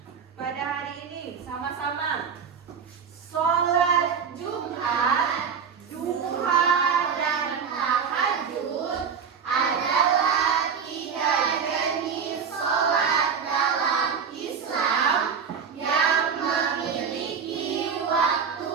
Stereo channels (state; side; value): quieter; left; 6.6 dB